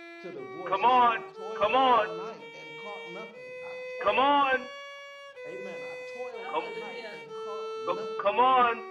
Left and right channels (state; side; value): identical; both; correlation 1.00